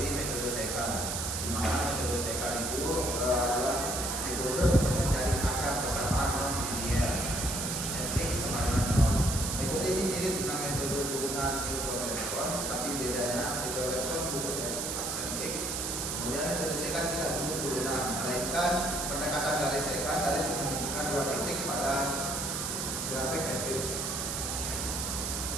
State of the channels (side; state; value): right; noise; hiss, 2 dB below the sound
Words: metode sekar. Di mana metode sekar itu adalah metode untuk mencari akar persamaan non linear. Fx sama dengan 0. Metode ini mirip dengan metode turunan Newton-Raphson, tapi bedanya Newton-Raphson butuh aksen x. Kemudian metode sekar tidak butuh turunan, melainkan pendekatan garis sekar, garis yang menunjukkan dua titik pada grafik fx.